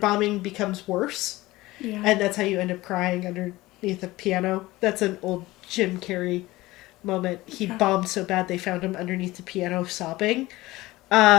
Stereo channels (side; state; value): right; quieter; 18.9 dB